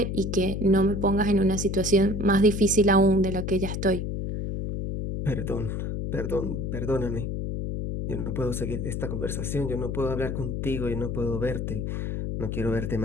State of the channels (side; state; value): left; noise; hum, 3 dB below the sound